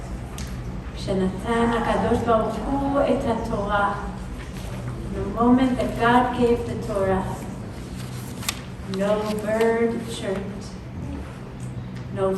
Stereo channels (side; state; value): both; identical; correlation 1.00